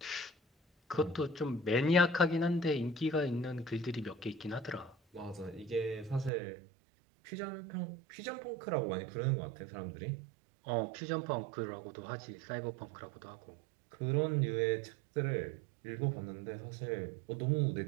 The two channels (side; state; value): left; drops out; at 6.3 s